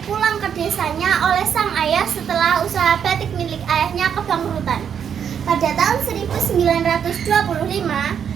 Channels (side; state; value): left; quieter; 8.0 dB